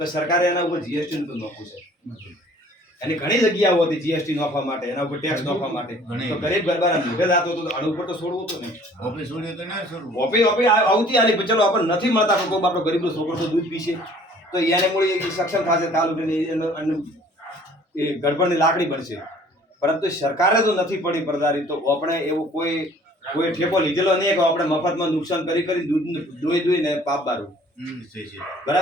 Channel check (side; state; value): both; normal; correlation 0.53